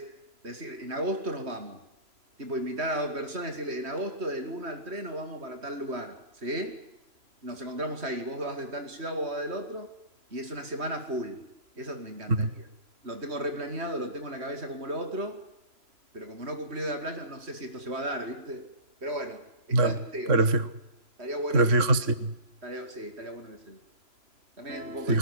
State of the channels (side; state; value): left; late; 3.0 ms